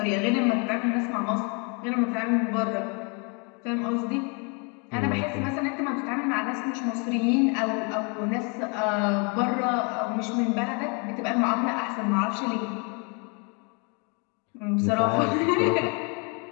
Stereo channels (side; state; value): right; quieter; 34.2 dB